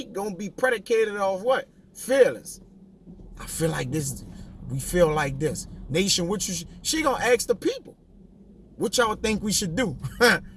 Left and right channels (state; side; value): identical; both; correlation 1.00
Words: gonna be predicated off what? Feelings. I feel like this. We feel like this. Nation, what she gonna ask the people, what y'all think we should do?